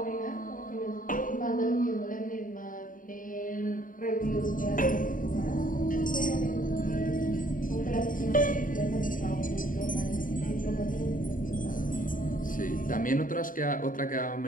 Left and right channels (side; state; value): right; late; 0.39 ms